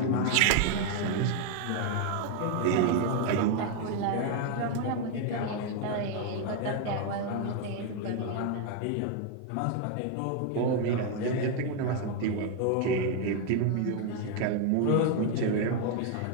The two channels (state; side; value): different; both; correlation 0.00